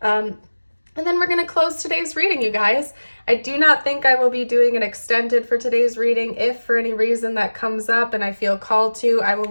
And then we're going to close today's reading, you guys. I do not think I will be doing an extended for today's reading. If for any reason that comes up and I feel called to, I will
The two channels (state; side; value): inverted; both; correlation -1.00